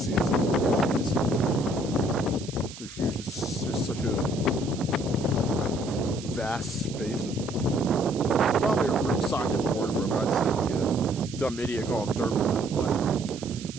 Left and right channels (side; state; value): right; noise; hiss, 15 dB below the sound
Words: so far. Jeez. They're huge. It's just such a vast space of these. There's probably a real scientific word for them. I just sound like a dumb idiot calling them dirt mountains, but